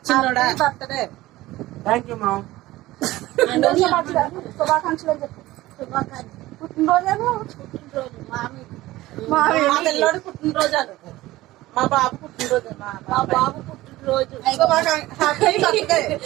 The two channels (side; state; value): left; quieter; 17.4 dB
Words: చిన్నోడా బర్త్డే. Thank you mom. శుభాకాంక్షలు అని చెప్పు. పుట్టినరోజు మా పిల్లోడు పుట్టినరోజు అను. మా బాబు పుట్టినరోజు. మా బాబు పుట్టినరోజు. Happy birthday.